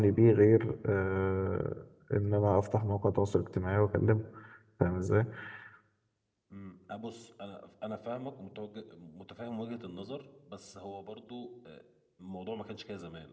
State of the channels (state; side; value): identical; both; correlation 1.00